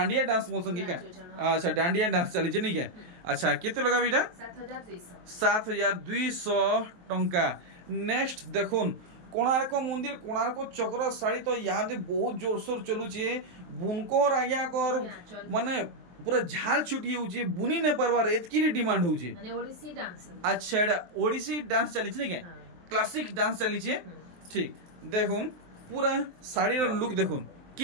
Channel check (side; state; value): left; late; 23 ms